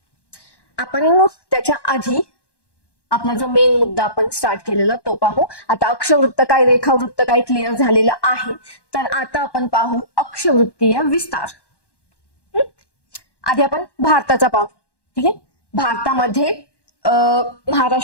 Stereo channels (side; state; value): right; late; 1.1 ms